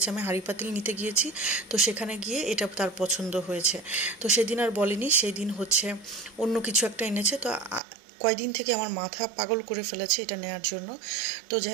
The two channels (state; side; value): drops out; left; at 7.8 s